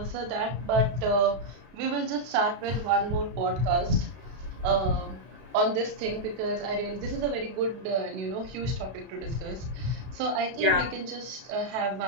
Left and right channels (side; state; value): left; late; 32 ms